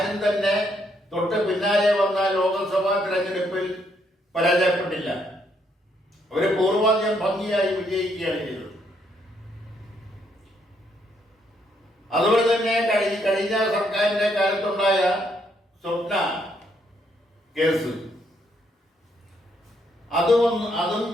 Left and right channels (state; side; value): normal; both; correlation 0.73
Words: തന്നെ തൊട്ട് പിന്നാലെ വന്ന ലോകസഭാ തെരഞ്ഞെടുപ്പിൽ പരാജയപ്പെട്ടില്ല. അവര് പൂർവാധികം ഭംഗിയായി വിജയിക്കുകയാണ് ചെയ്തത്. അതുപോലെ തന്നെ കഴിഞ്ഞ സർക്കാരിന്റെ കാലത്തുണ്ടായ സ്വപ്ന കേസ് അതും